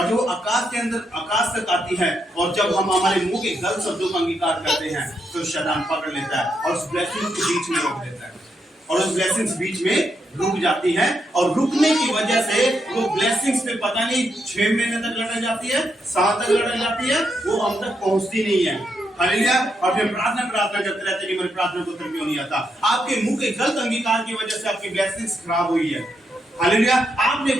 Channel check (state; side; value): normal; both; correlation 0.81